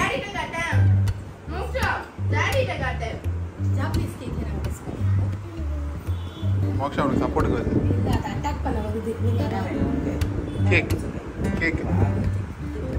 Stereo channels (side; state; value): both; identical; correlation 1.00